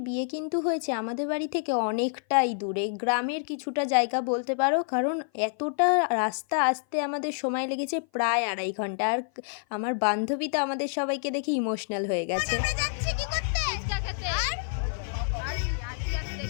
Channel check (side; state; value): right; silent; 56 dB below the other